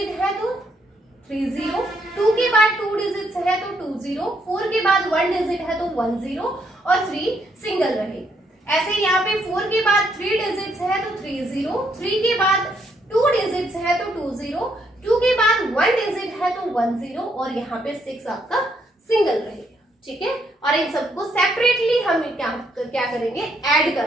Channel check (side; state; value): both; normal; correlation 0.74